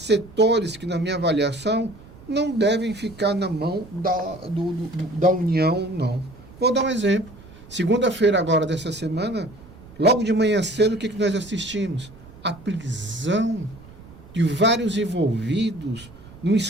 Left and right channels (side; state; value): right; noise; rumble, 20 dB below the sound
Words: que, na minha avaliação, não devem ficar na mão da União, não. Vou dar um exemplo. Segunda-feira agora dessa semana, logo de manhã cedo, o que nós assistimos? A prisão de vários envolvidos num